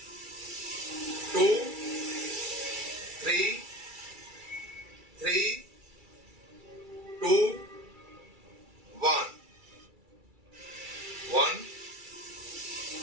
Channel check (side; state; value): left; late; 2.3 ms